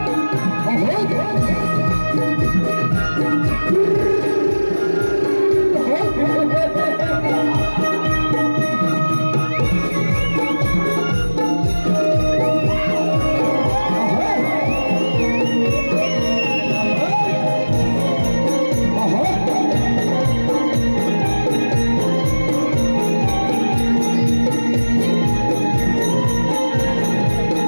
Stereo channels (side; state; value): both; inverted; correlation -1.00